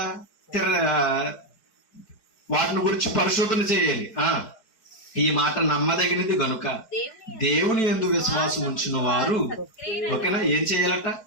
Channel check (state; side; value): late; right; 4.9 ms